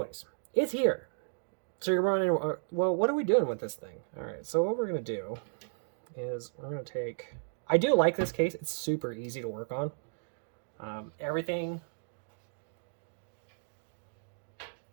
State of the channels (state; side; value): silent; left; digital silence